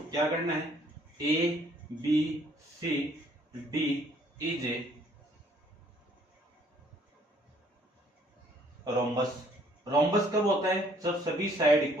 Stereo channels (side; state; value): both; normal; correlation 0.62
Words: क्या करना है, A B C D is a rhombus. Rhombus कब होता है, जब सभी साइड